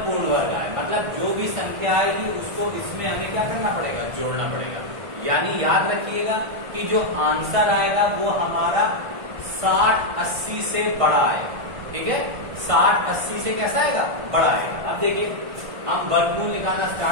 पूर्ण वर्ग आए। मतलब जो भी संख्या आएगी उसको इसमें हमें क्या करना पड़ेगा, जोड़ना पड़ेगा। यानी याद रखिएगा कि जो आंसर आएगा वो हमारा 60-80 से बड़ा आएगा। ठीक है, 60-80 से कैसा आएगा, बड़ा आएगा। अब देखिए हम वर्गमूल निकालना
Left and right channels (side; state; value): left; late; 1.5 ms